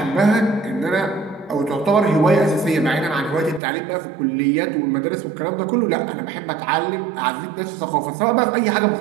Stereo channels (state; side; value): drops out; left; at 3.6 s